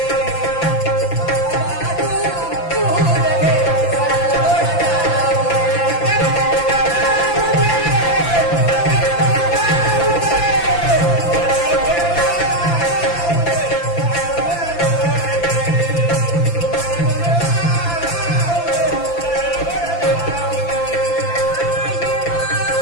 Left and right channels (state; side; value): late; right; 5.9 ms